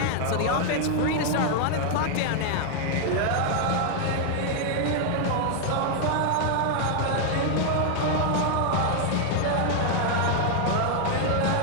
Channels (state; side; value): different; both; correlation 0.00